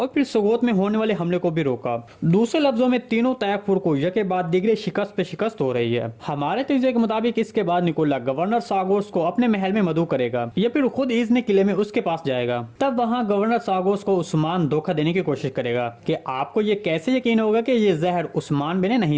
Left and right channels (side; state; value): both; identical; correlation 1.00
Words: फिर सगोत में होने वाले हमले को भी रोका। दूसरे लफ्जों में तीनों तैयफुर को यके बाद दिगरे शिकस्त पे शिकस्त हो रही है। हमारे तजज़िये के मुताबिक इसके बाद निकोला गवर्नर सागोस को अपने महल में मदऊ करेगा या फिर खुद इजने किले में उसके पास जाएगा। तब वहाँ गवर्नर सागोस को उस्मान धोखा देने की कोशिश करेगा कि आपको ये कैसे यकीन होगा कि ये जहर उस्मान बे ने